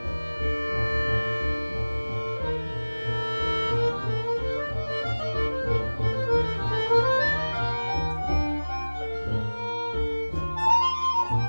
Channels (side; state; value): both; inverted; correlation -1.00